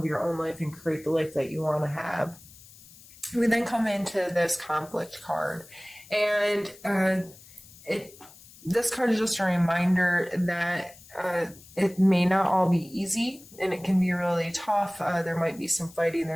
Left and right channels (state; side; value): noise; left; hiss, 22 dB below the sound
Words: your own life and create the life that you want to have. We then come into this conflict card, and this card is just a reminder that it may not all be easy, and it can be really tough. There might be some fighting,